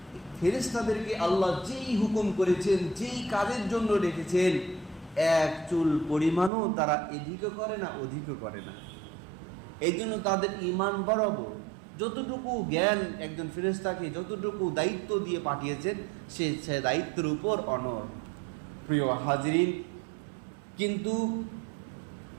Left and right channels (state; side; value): drops out; left; at 6.5 s